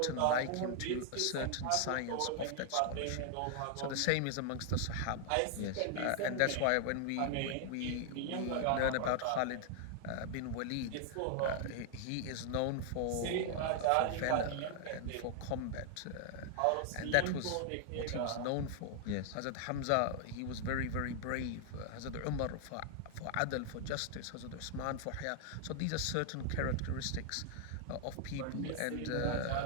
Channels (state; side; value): different; both; correlation 0.00